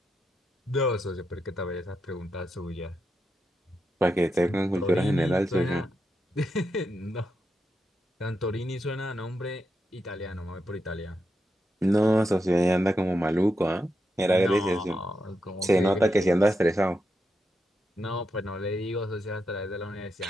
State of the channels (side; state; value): both; normal; correlation 0.85